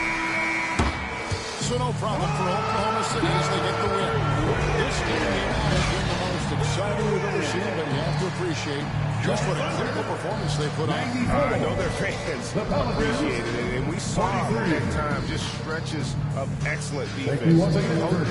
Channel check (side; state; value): both; identical; correlation 1.00